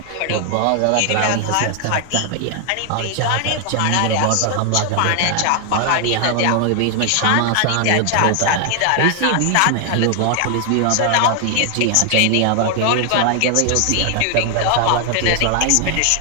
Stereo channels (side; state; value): both; different; correlation 0.00